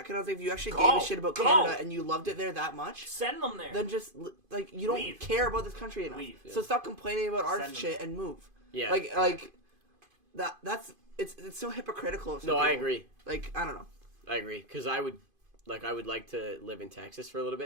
I was like, if you actually Go! gave a shit about Go! Canada and you loved it there that much, Send them there. then just like you don't Leave. care about this country enough. Leave. So stop complaining about our Send them shit there. and move. Yeah. Like that's it's so hypocritical. Of some No, I people. agree. Like I don't know. I agree because I would like to live in Texas for a little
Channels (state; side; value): late; left; 2.5 ms